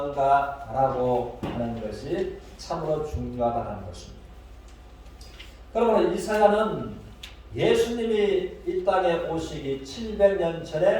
하는 것이 참으로 중요하다는 것입니다. 그러므로 이사야는 예수님이 이 땅에 오시기 700년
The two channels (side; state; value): both; identical; correlation 1.00